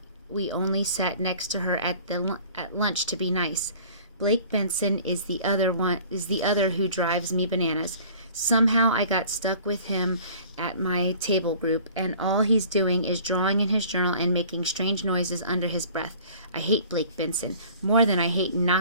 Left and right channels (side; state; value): both; inverted; correlation -0.48